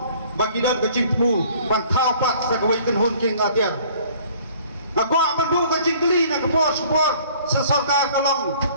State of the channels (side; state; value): both; inverted; correlation -0.54